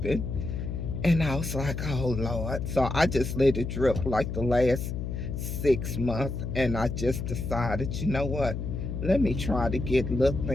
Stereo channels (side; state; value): left; noise; hum, 4 dB below the sound